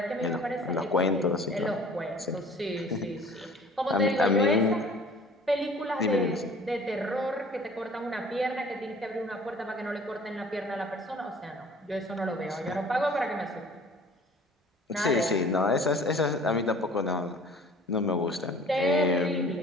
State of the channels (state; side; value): normal; both; correlation 0.48